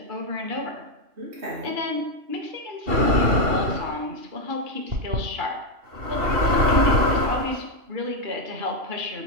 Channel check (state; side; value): late; left; 2.9 ms